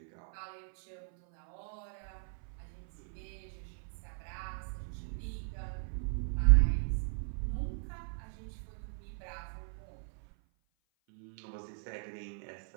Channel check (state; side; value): silent; left; 53 dB below the other